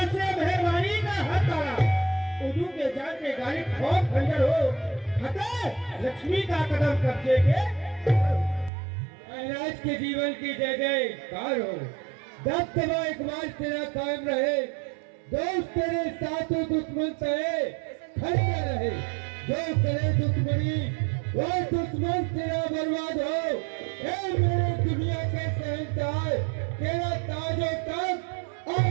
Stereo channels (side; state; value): left; drops out; at 8.7 s